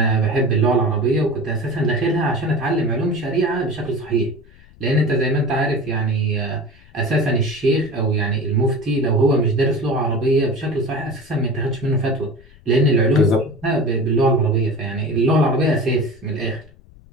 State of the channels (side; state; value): left; noise; rumble, 25 dB below the sound